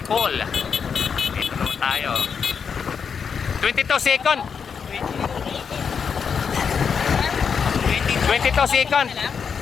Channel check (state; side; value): quieter; right; 6.5 dB